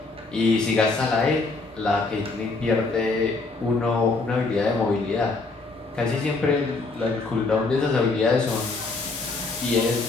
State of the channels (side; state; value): right; quieter; 3.7 dB